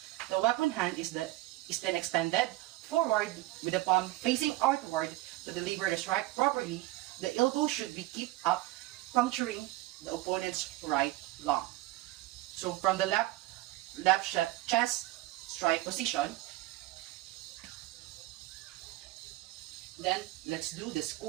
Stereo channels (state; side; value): quieter; left; 17.8 dB